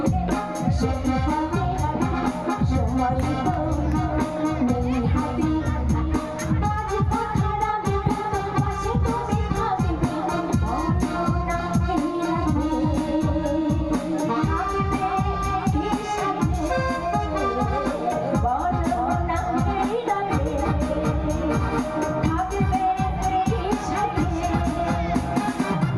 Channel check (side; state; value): left; noise; rumble, 26 dB below the sound